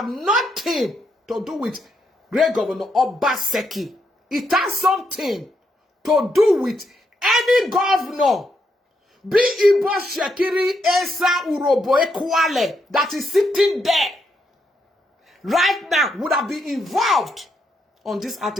nothing to do with Great Governor Obaseki. It has something to do with any governor, be Ibo Shekiri Esa Urobo Ekwale, that is sitting there right now would have been involved on these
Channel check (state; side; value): normal; both; correlation 0.79